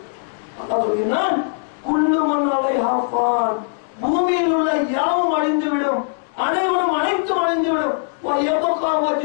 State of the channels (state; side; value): silent; right; digital silence